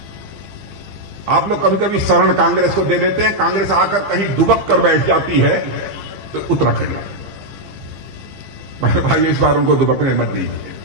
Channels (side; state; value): left; late; 15 ms